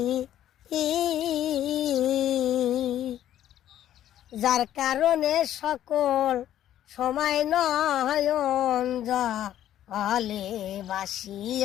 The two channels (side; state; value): right; quieter; 11.8 dB